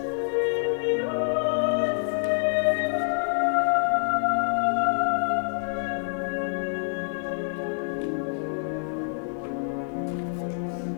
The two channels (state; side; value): silent; right; digital silence